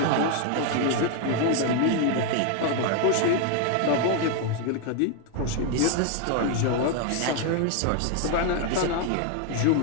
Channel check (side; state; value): both; different; correlation 0.01